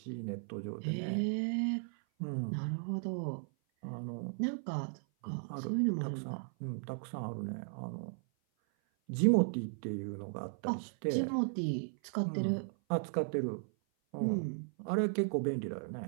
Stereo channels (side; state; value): left; silent; 54 dB below the other